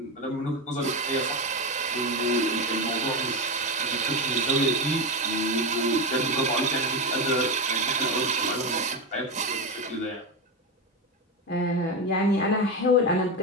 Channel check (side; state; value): both; normal; correlation 0.14